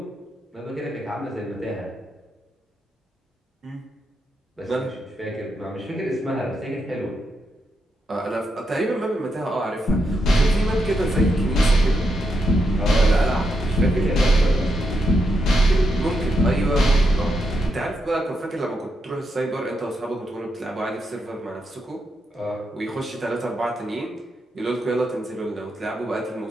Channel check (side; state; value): both; normal; correlation 0.82